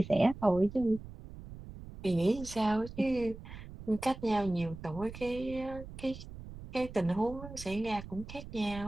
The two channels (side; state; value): right; noise; rumble, 13 dB below the sound